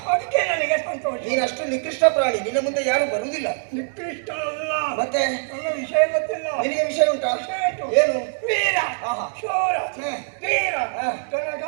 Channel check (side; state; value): left; silent; digital silence